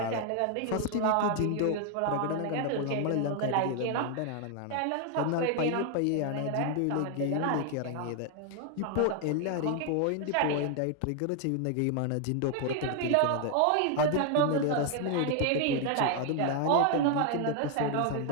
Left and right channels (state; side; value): different; both; correlation 0.00